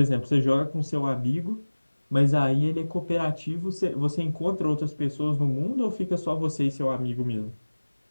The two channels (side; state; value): both; inverted; correlation -1.00